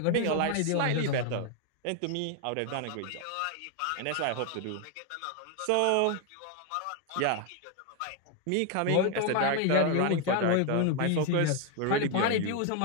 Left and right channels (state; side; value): different; both; correlation 0.01